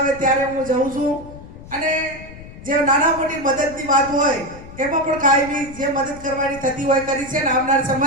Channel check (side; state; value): left; noise; rumble, 16 dB below the sound